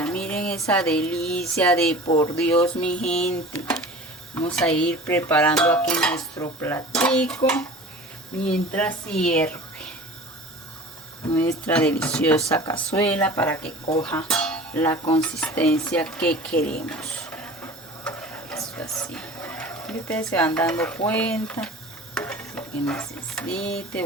Miren esa delicia de por Dios, mi gente. Vamos a ir preparando aquí nuestro platico mientras hierve nuestra deliciosa cazuela para que coja la consistencia que queremos. Eso así. Y ustedes se van dando cuenta que necesite.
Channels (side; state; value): both; normal; correlation 0.40